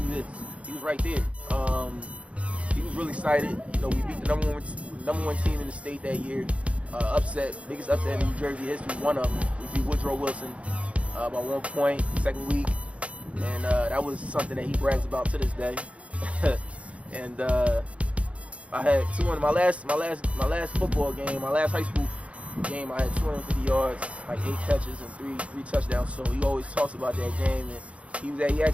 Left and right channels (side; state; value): left; late; 0.063 ms